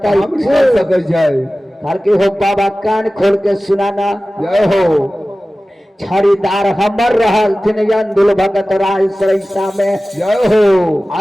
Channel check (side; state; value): both; normal; correlation 0.96